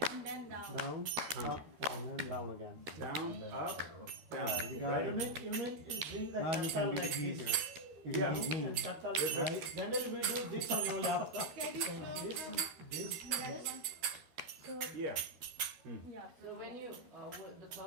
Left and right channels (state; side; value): late; left; 13 ms